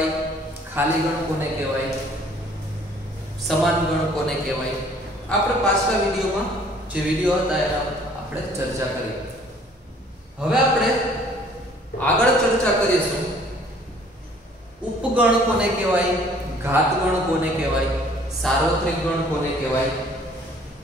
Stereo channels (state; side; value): normal; both; correlation 0.56